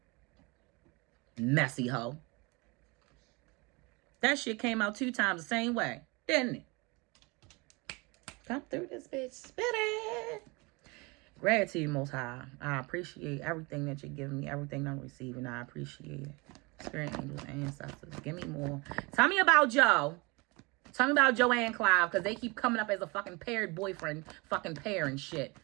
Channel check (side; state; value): left; quieter; 26.9 dB